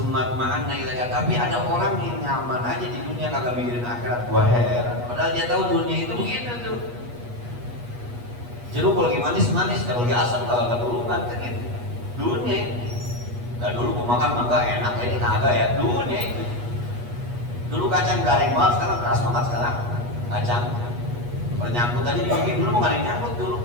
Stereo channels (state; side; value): late; left; 8.3 ms